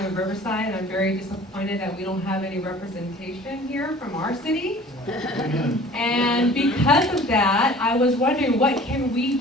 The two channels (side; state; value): both; normal; correlation 0.47